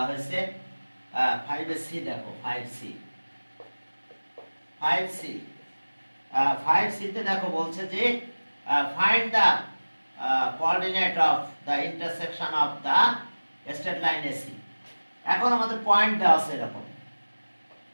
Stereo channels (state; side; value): inverted; both; correlation -1.00